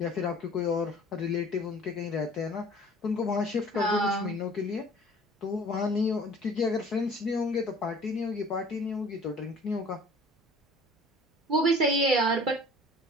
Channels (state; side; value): normal; both; correlation 0.49